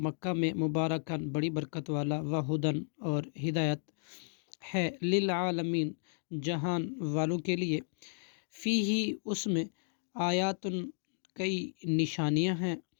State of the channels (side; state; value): right; silent; digital silence